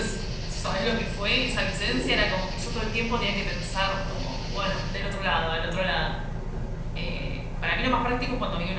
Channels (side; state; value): both; identical; correlation 1.00